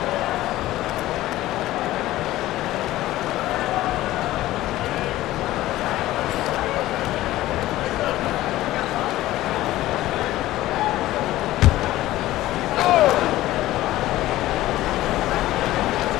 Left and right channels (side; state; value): right; quieter; 15.8 dB